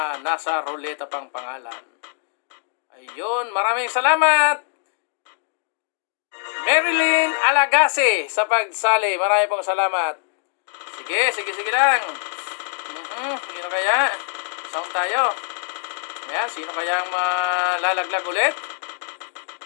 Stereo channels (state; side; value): silent; right; digital silence